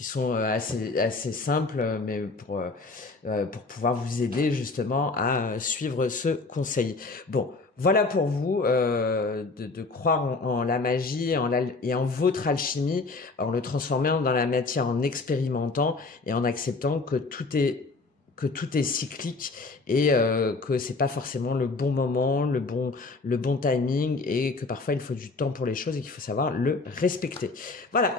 sont assez simples, mais pour pouvoir vous aider justement à suivre ce conseil. Bon. Voilà pour vous, de croire en la magie et en votre alchimie, en le transformant dans la matière, en expérimentant et en acceptant que tout est cyclique et que c'est pas forcément le bon moment, le bon timing et que parfois il faut du temps pour les choses et qu'il faut savoir le respecter. Voilà,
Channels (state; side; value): quieter; right; 3.8 dB